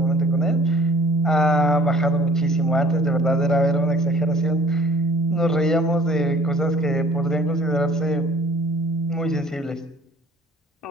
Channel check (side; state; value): both; normal; correlation 0.53